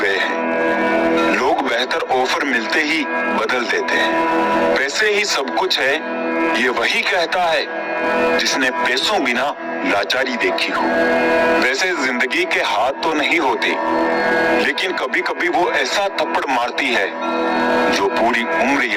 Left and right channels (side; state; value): both; identical; correlation 1.00